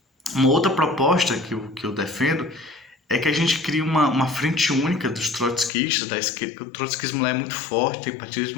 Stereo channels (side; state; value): right; drops out; at 5.7 s